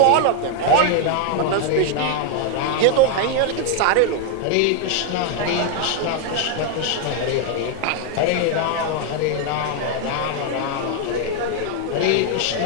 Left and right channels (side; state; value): both; different; correlation 0.00